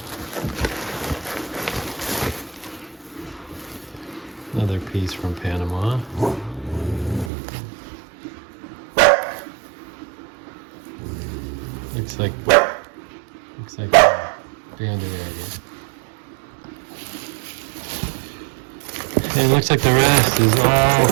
Another piece from Panama. Looks like banded agate. And it looks like the rest is all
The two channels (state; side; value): drops out; left; at 7.3 s